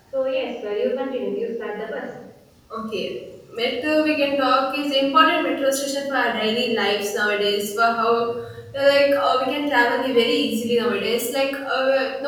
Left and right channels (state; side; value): identical; both; correlation 1.00